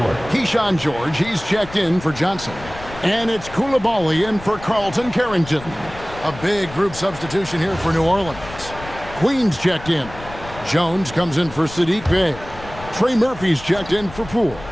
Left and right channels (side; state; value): left; noise; rumble, 15 dB below the sound